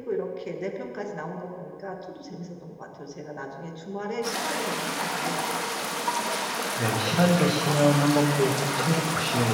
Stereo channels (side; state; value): both; identical; correlation 1.00